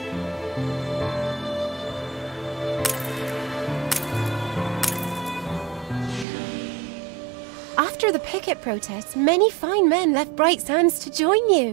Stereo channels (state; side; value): drops out; left; at 6.2 s